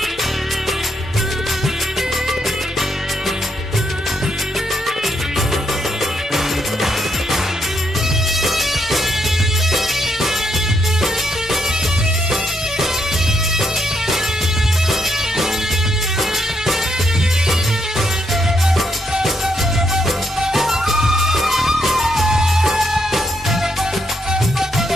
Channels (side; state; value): both; normal; correlation 0.77